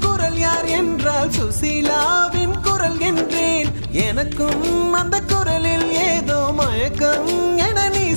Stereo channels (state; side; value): inverted; both; correlation -1.00